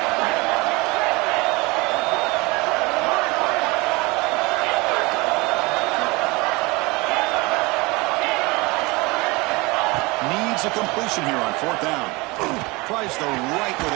Needs a completion here on fourth down. Tries the right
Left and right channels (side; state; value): left; quieter; 24.6 dB